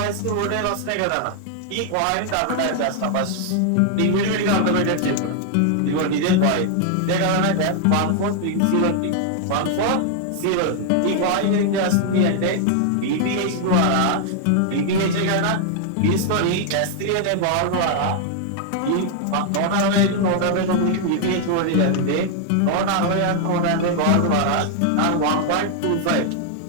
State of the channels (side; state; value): both; different; correlation 0.00